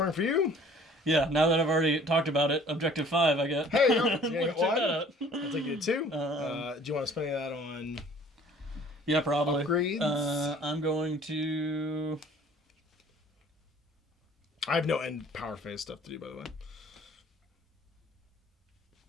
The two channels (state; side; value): normal; both; correlation 0.53